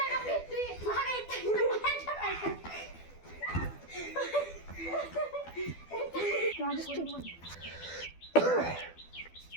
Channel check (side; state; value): right; late; 12 ms